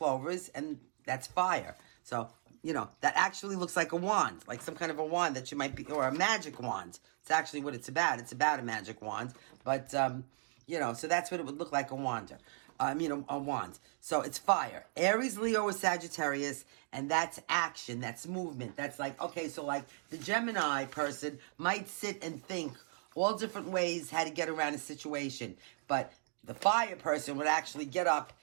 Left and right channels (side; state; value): left; silent; 53 dB below the other